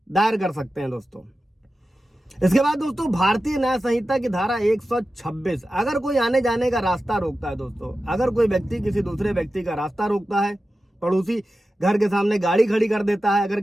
दायर कर सकते हैं दोस्तों। इसके बाद दोस्तों, भारतीय न्याय संहिता की धारा 126, अगर कोई आने जाने का रास्ता रोकता है दोस्तों, अगर कोई व्यक्ति किसी दूसरे व्यक्ति का रास्ता रोकता है, पड़ोसी घर के सामने गाड़ी खड़ी कर देता है, अगर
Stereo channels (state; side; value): normal; both; correlation 0.93